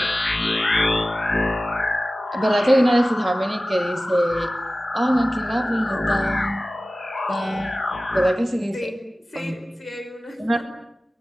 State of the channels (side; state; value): both; normal; correlation 0.96